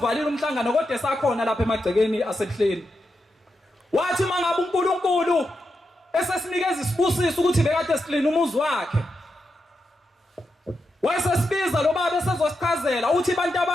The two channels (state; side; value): normal; both; correlation 0.86